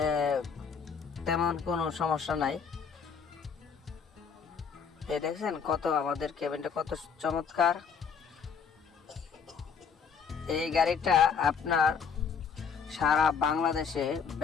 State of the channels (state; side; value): quieter; right; 6.3 dB